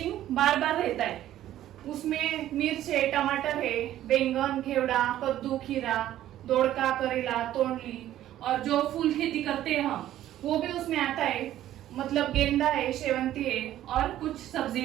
बार बार रहता है। उसमें मिर्च है, टमाटर है, बैंगन, घेवड़ा, कद्दू, खीरा, दोड़का, करेला, तोंडली, और जो फूल खेती करते हैं हम वो भी उसमें आता है, मतलब गेंदा है, शेवंती है और कुछ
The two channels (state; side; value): quieter; left; 12.9 dB